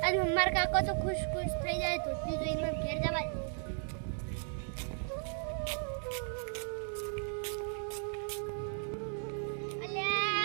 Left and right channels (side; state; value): left; silent; 54 dB below the other